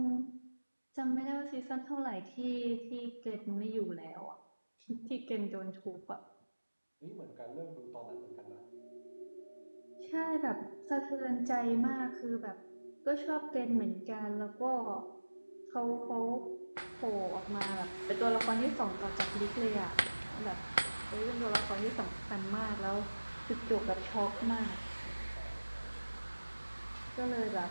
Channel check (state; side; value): inverted; both; correlation -1.00